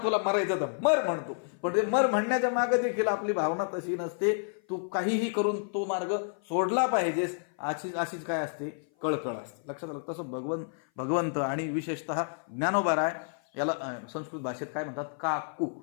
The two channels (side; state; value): right; silent; 55 dB below the other